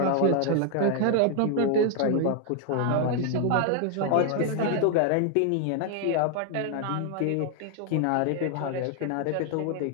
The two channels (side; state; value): both; different; correlation 0.00